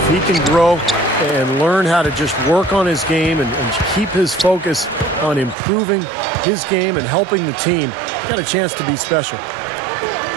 he can grow and learn how to just work on his game and keep his focus on improving his game and helping the team, he's got a chance to be special.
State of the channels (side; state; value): left; drops out; at 5.6 s